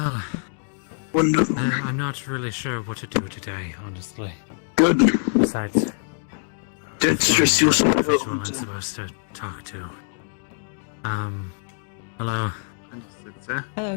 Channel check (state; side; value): silent; right; digital silence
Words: my well, Wonderful. I'm not really sure what to do today, honestly. Good. Besides, That's just your visual I'm support. supposed to talk to. Hello. Hello,